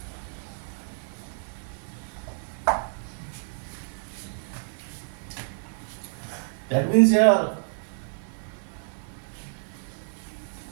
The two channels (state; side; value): silent; left; digital silence